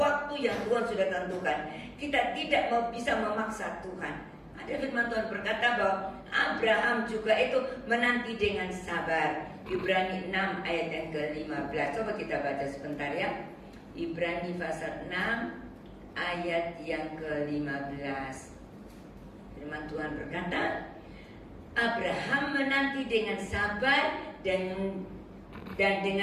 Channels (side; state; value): both; identical; correlation 1.00